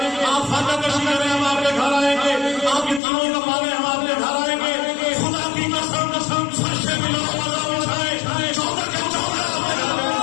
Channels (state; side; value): drops out; right; at 3.0 s